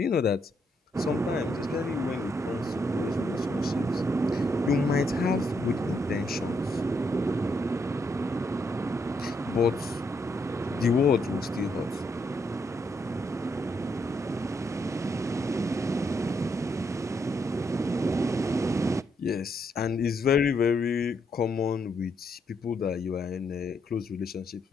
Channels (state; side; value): normal; both; correlation 0.77